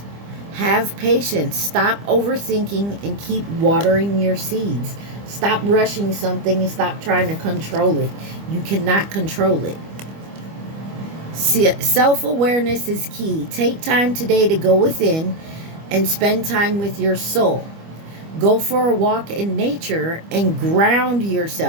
Have patience. Stop overthinking and keep watering your seeds. Stop rushing something and stop trying to control it. You cannot control it. Self-awareness is key. Take time today to go within and spend time with your soul. Go for a walk in nature and ground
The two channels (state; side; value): late; left; 25 ms